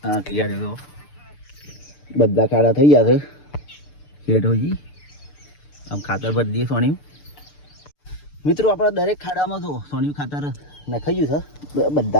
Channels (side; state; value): right; late; 6.8 ms